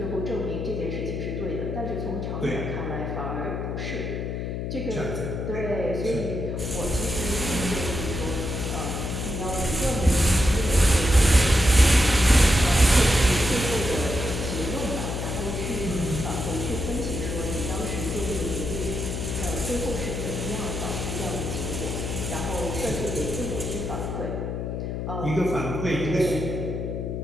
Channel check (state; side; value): noise; left; hum, 3 dB below the sound